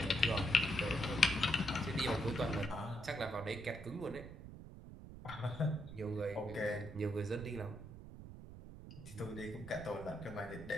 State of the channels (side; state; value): right; noise; rumble, 13 dB below the sound